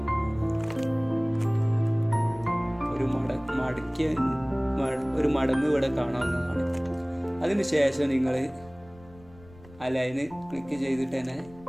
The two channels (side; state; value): left; noise; rumble, 23 dB below the sound